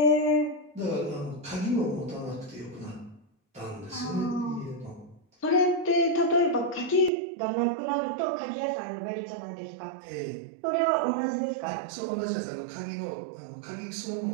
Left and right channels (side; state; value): left; drops out; at 7.1 s